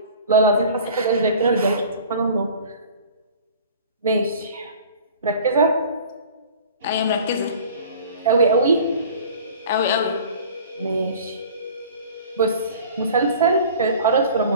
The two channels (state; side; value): inverted; both; correlation -0.44